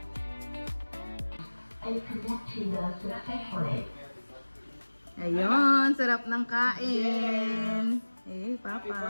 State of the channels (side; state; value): both; inverted; correlation -1.00